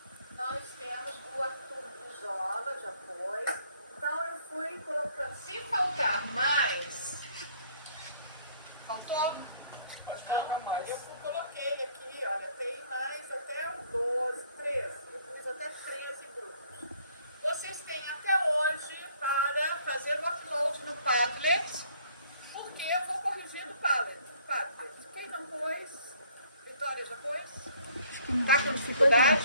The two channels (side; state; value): both; inverted; correlation -0.60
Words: nós temos o Arthur Bijola, já foi. Então eu fui colocando, se faltar mais, faltou? Eu coloquei aqui, olha, tem mais até 12, 13, eu pus até 13 grupos. Vocês têm até hoje para fazer o upload no Padlet, porque eu vou corrigir do Padlet. Quem não pôs? Vitória já pôs? Está com